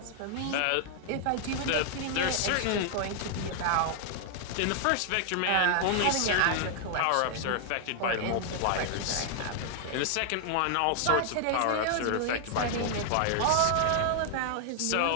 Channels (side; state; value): both; different; correlation 0.00